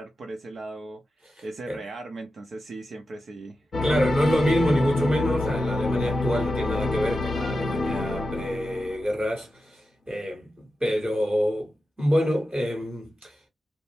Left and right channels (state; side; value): normal; both; correlation 0.91